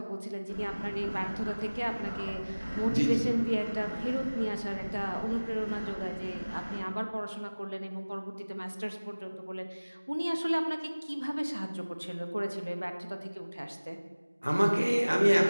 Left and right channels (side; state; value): both; inverted; correlation -1.00